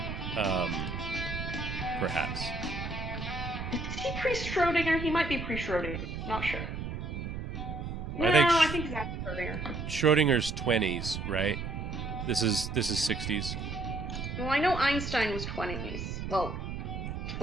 perhaps. Is he pre-Schrodinger? He might be pre-Schrodinger. Not sure. I think he's after Schrodinger. Schrodinger's 20s, right? This is 60s. Well, I know Einstein was 20s. Well,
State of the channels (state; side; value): noise; right; rumble, 5 dB below the sound